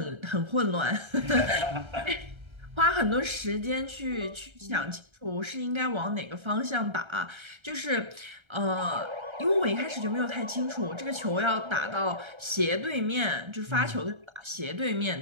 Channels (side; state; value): left; late; 1.3 ms